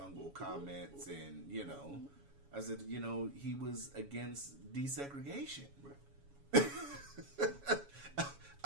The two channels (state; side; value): late; left; 7.1 ms